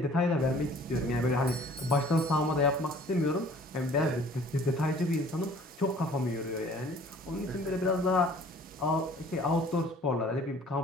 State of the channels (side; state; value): both; normal; correlation 0.52